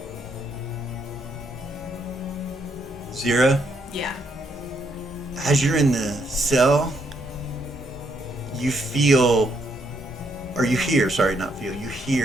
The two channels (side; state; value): both; normal; correlation 0.74